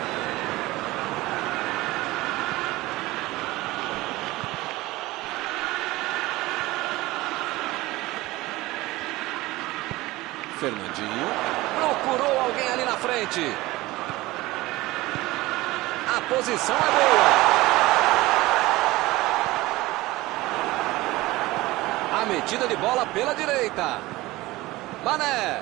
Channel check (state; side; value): quieter; left; 19.3 dB